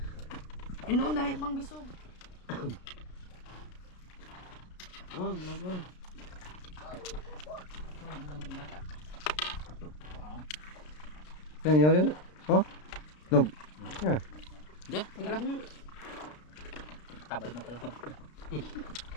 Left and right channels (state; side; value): late; right; 33 ms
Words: Inoon dami pang bisog. Oh, vlog. Yan, yan. Oh, nog. Yeah. Diyan, wala. Tabal na pala.